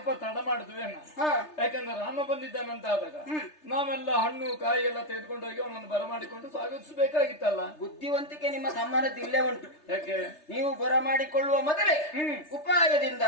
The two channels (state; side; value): late; right; 3.3 ms